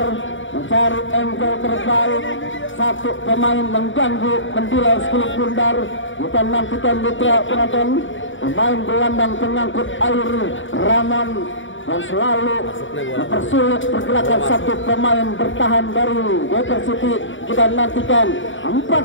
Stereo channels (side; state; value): right; late; 0.56 ms